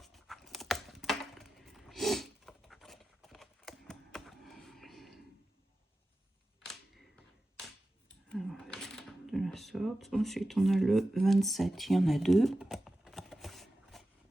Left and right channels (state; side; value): normal; both; correlation 0.93